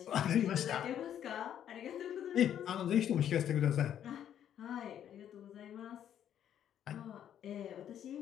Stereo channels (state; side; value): quieter; right; 10.0 dB